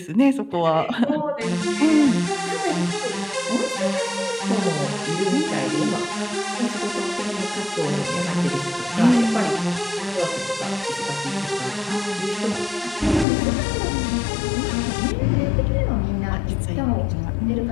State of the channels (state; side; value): drops out; right; at 13.2 s